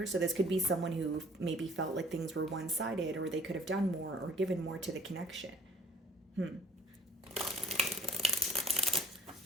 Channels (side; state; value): both; normal; correlation 0.53